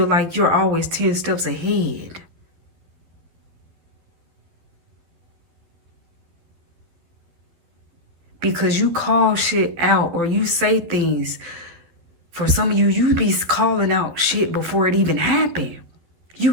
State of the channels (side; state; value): left; late; 12 ms